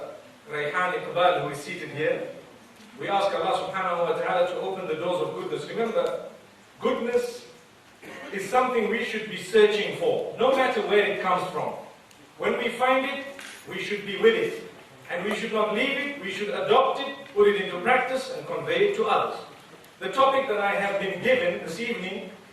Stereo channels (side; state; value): both; identical; correlation 1.00